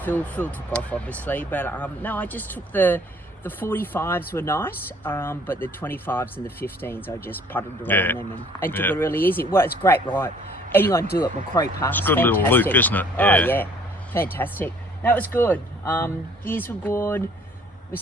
Phil. Phil took off, obviously, but no, I just took the 45s were nice, but the 25s and the 15s, I just putted around them and took it really easy. Well, it's a great ride. Anyone do it, Macquarie Pass. It's a good little loop, isn't it? Oh, yeah. Fantastic. That was good. Gears were good. We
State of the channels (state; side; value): normal; both; correlation 0.57